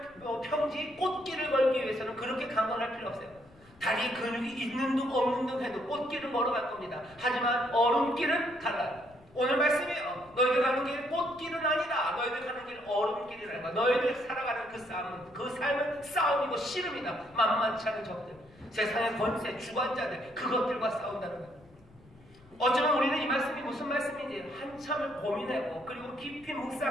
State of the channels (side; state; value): left; noise; rumble, 26 dB below the sound